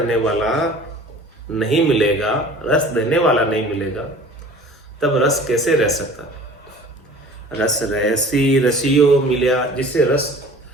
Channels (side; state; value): both; normal; correlation 0.45